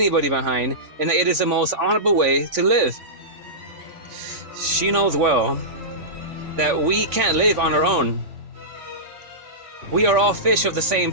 behind, and that it is the most honorable way to live. She knows well that we can't live on our own. We are all fish of the same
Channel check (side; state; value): left; late; 3.5 ms